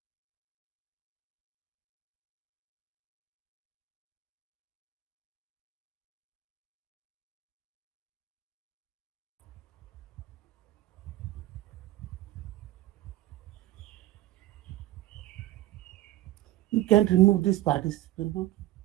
You can't remove this participant. No?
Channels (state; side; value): quieter; left; 15.7 dB